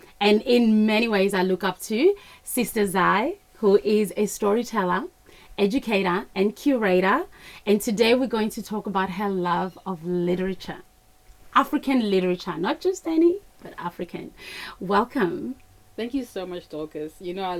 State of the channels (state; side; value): identical; both; correlation 1.00